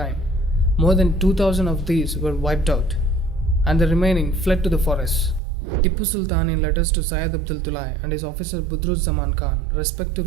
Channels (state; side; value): drops out; left; at 5.4 s